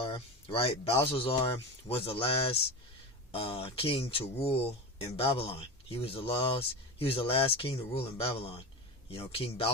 right? Belshazzar was the last king to rule in Babylon. He was the last king to rule in Babylon. King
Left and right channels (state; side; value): normal; both; correlation 0.25